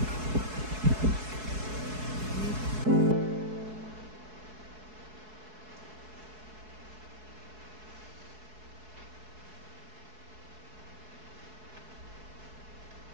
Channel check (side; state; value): left; late; 4.7 ms